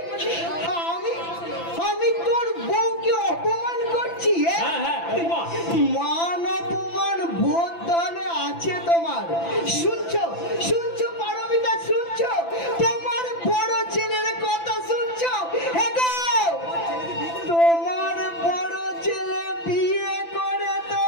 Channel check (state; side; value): late; right; 5.9 ms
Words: আমি তোর বউকে অপমান করছি? হ্যাঁ হ্যাঁ, অপমান। মান অপমান বোধ তাহলে আছে তোমার? শুনছো শুনছো পারমিতা, শুনছো? তোমার বড় ছেলের কথা শুনছো? এগো, তোমার বড় ছেলে বিয়ে করে তো